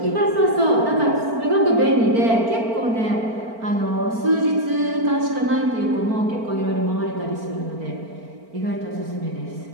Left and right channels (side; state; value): left; late; 4.4 ms